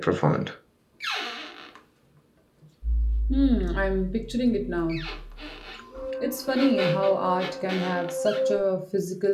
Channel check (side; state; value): both; identical; correlation 1.00